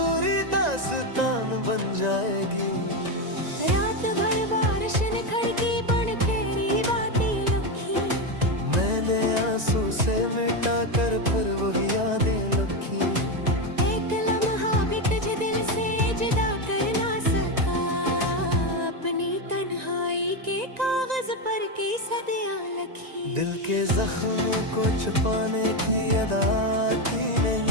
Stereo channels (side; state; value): left; late; 1.9 ms